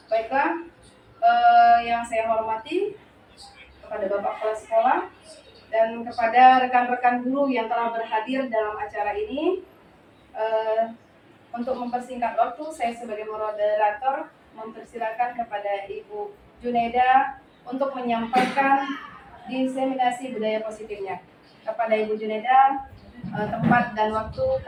Baiklah, yang saya hormati kepada Bapak Kepala Sekolah dan kepada rekan-rekan guru yang telah berhadir dalam acara ini. Untuk mempersingkat waktu, saya sebagai moderator mempersilakan kepada Ibu Junaida untuk menyampaikan diseminasi budaya positifnya. Kepada Ibu Junaida, tempat dan waktu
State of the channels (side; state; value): both; identical; correlation 1.00